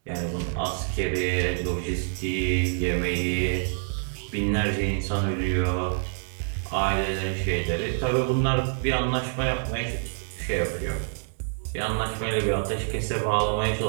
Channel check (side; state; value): left; silent; digital silence